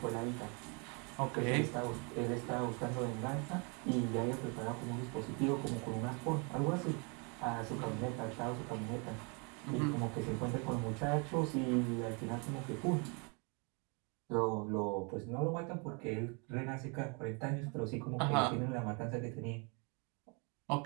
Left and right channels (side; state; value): left; quieter; 33.7 dB